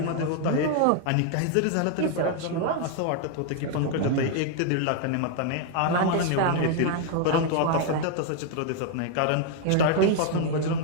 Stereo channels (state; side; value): different; both; correlation 0.00